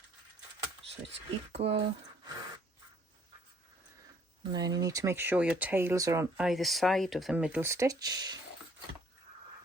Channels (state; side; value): normal; both; correlation 0.61